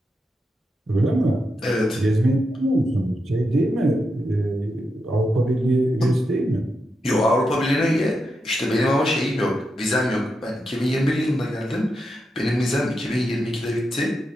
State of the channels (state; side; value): normal; both; correlation 0.86